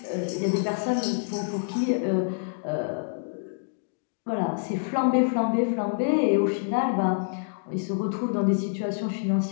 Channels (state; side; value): silent; right; digital silence